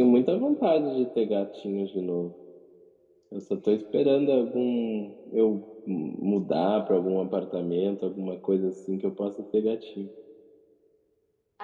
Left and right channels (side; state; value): both; identical; correlation 1.00